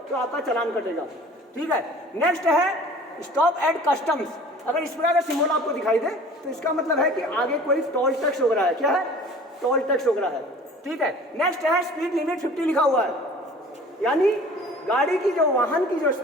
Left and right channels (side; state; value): both; normal; correlation 0.46